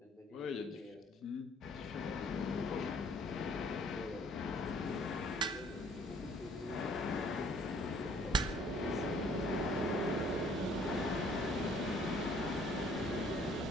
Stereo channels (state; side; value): normal; both; correlation 0.59